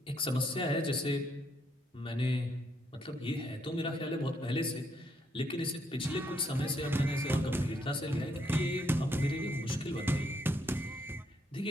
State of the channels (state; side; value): normal; both; correlation 0.74